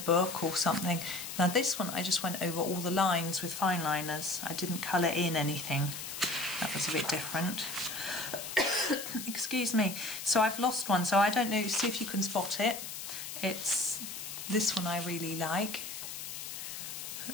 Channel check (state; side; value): noise; left; hiss, 8 dB below the sound